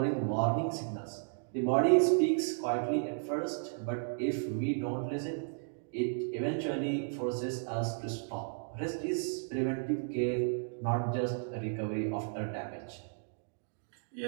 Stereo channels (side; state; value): left; silent; digital silence